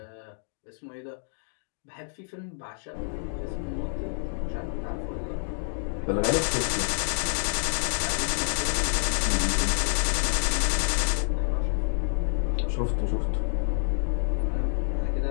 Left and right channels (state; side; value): silent; right; digital silence